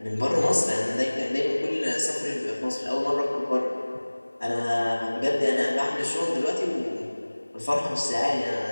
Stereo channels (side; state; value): both; inverted; correlation -1.00